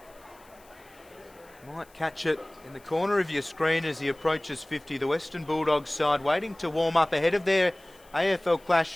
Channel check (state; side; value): noise; left; hiss, 28 dB below the sound